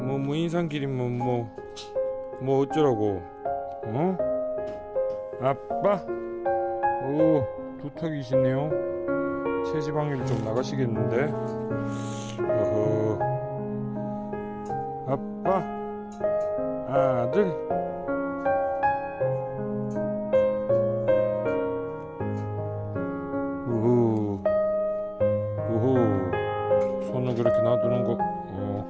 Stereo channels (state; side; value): identical; both; correlation 1.00